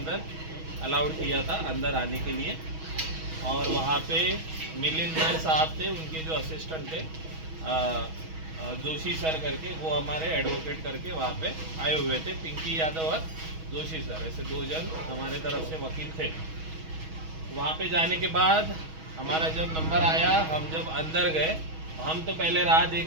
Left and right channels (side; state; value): left; late; 6.3 ms